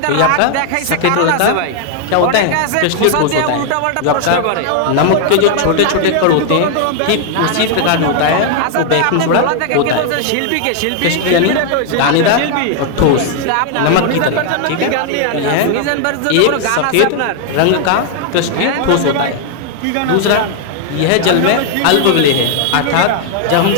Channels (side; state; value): both; different; correlation 0.00